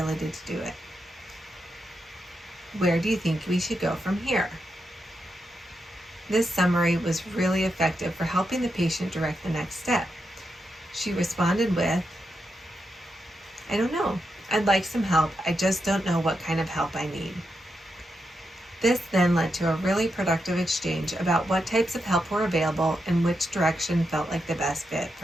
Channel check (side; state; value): both; normal; correlation 0.85